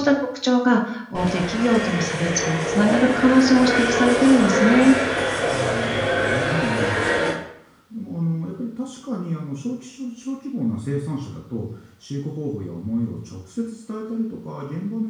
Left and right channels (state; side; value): identical; both; correlation 1.00